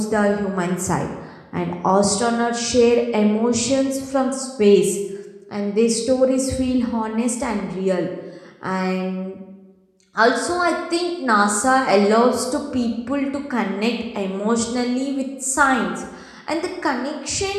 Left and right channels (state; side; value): identical; both; correlation 1.00